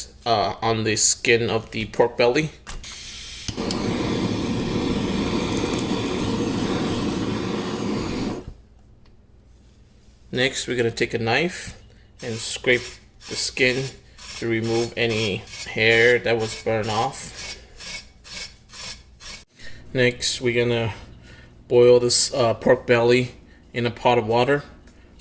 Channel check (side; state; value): both; identical; correlation 1.00